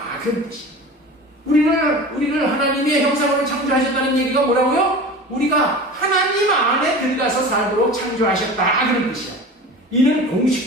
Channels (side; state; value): both; normal; correlation 0.35